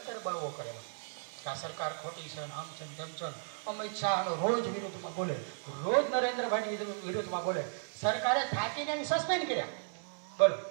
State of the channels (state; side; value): silent; left; 54 dB below the other